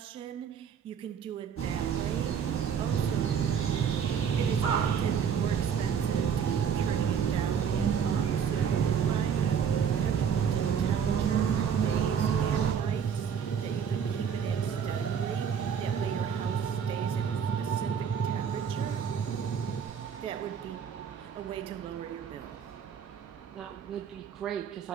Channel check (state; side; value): quieter; left; 7.5 dB